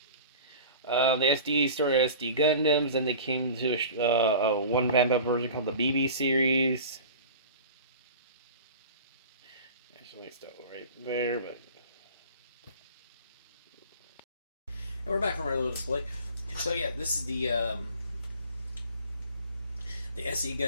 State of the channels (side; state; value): both; inverted; correlation -0.39